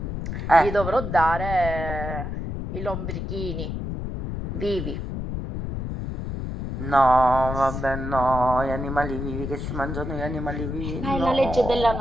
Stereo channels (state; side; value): noise; left; rumble, 5 dB below the sound